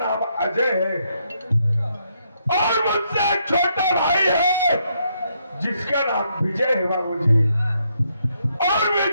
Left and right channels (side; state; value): both; inverted; correlation -0.76